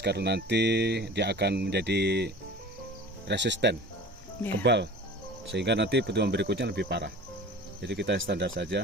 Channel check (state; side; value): normal; both; correlation 0.40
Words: karena nanti dia akan menjadi resisten, kebal, sehingga nanti pertumbuhan berikutnya lebih parah. Jadi kita standar